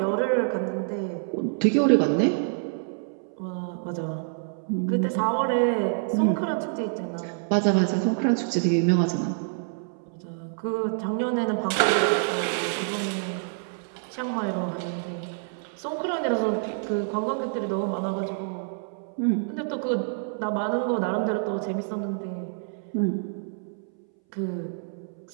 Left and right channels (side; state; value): left; silent; 60 dB below the other